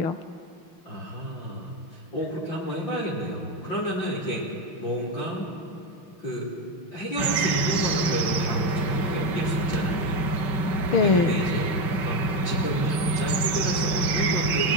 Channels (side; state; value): right; late; 5.4 ms